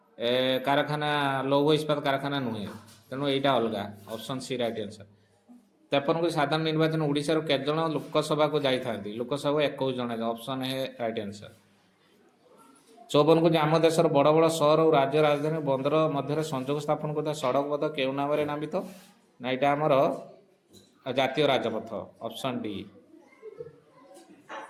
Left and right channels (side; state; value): both; identical; correlation 1.00